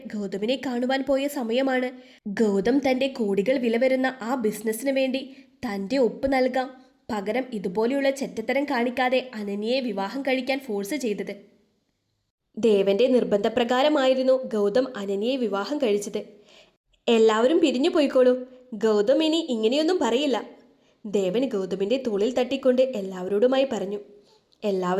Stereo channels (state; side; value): identical; both; correlation 1.00